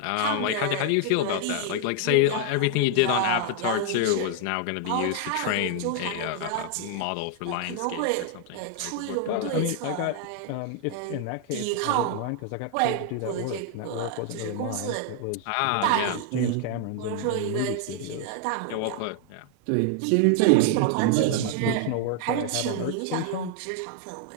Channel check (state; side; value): different; both; correlation 0.00